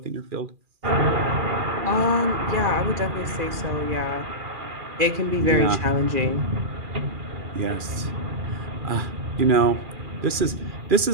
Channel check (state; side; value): late; left; 2.4 ms